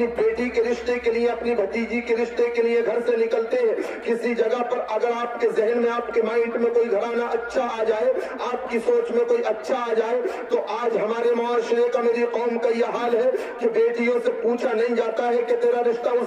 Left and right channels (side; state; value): both; identical; correlation 1.00